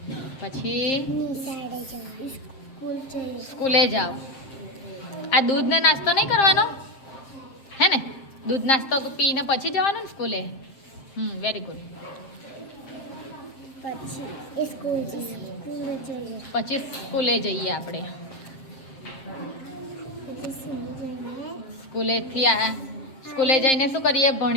પછી સ્કૂલે જાઓ. આ દૂધ ને નાસ્તો નહીં કરવાનો હે ને? દૂધ નાસ્તો પીને પછી જવાનું ને સ્કૂલે. Very good. પછી સ્કૂલે જઈએ આપણે. સ્કૂલે જઈને શું કરીએ?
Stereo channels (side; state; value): right; late; 7.6 ms